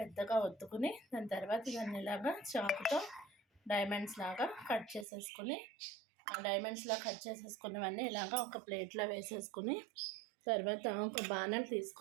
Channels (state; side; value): drops out; left; at 5.1 s